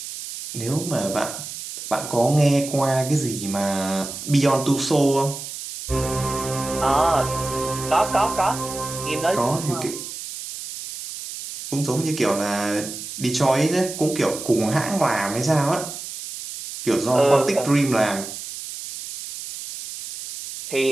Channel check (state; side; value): noise; right; hiss, 9 dB below the sound